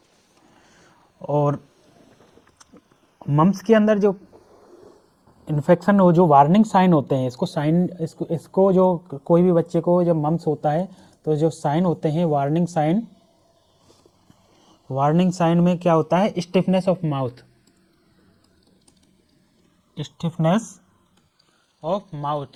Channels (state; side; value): identical; both; correlation 1.00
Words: और मम्स के अंदर जो इन्फेक्शन हो, जो वार्निंग साइन होते हैं, इसको जो कोई भी बच्चे को जब मम्स होता है तो जो साइन होते हैं वार्निंग साइन में क्या होता है? स्टिफनेस ऑफ